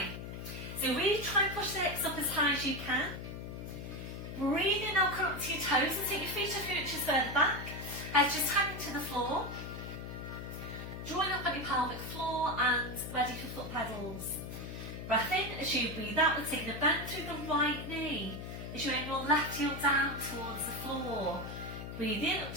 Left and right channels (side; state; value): left; noise; hum, 8 dB below the sound